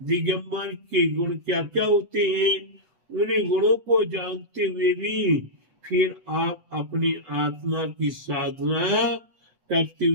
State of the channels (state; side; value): late; left; 8.2 ms